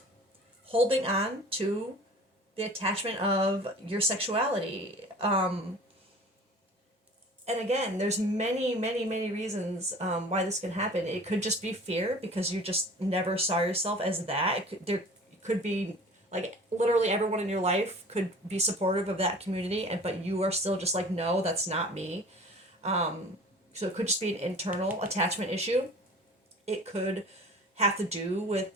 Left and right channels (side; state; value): both; normal; correlation 0.43